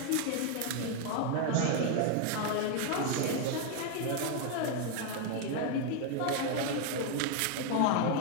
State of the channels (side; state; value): both; different; correlation 0.01